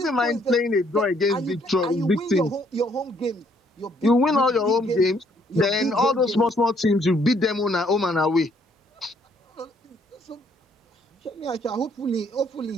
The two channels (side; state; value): both; normal; correlation 0.67